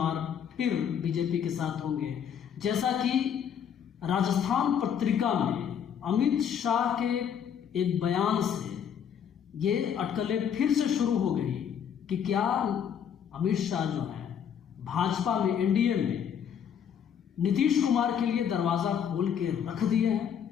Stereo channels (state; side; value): quieter; right; 8.3 dB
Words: फिर बीजेपी के साथ होंगे। जैसा कि राजस्थान पत्रिका में अमित शाह के एक बयान से ये अटकलें फिर से शुरू हो गई कि क्या अमित शाह जो है भाजपा में, एनडीए में नीतीश कुमार के लिए दरवाजा खोल के रख दिए